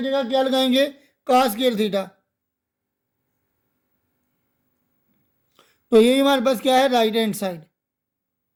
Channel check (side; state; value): both; identical; correlation 1.00